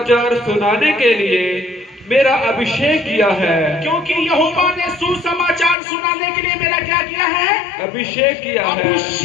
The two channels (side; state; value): right; drops out; at 5.8 s